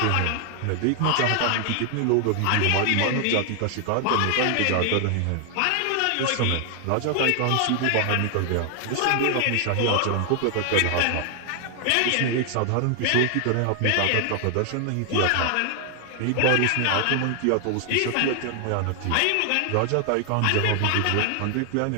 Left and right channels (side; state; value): both; different; correlation 0.00